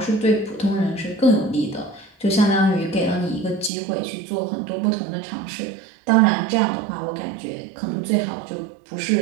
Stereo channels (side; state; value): left; drops out; at 3.7 s